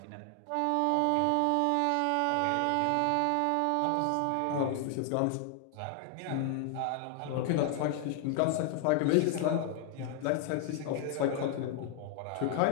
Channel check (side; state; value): both; different; correlation 0.00